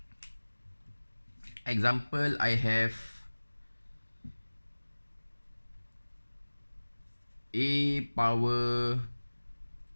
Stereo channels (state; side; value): inverted; both; correlation -1.00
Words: Example, I have a power